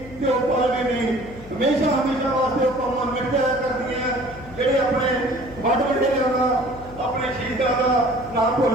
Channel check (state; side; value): noise; left; hum, 18 dB below the sound